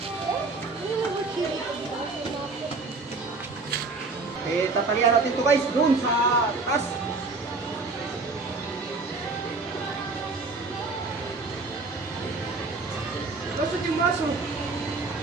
Tatalian natin to guys doon sa taas. Lusot yung baso.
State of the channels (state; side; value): quieter; left; 3.8 dB